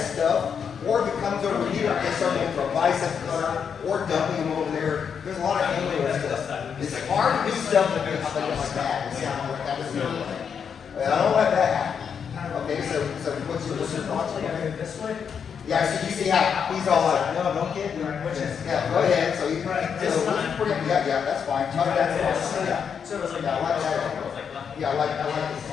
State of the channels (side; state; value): right; quieter; 7.0 dB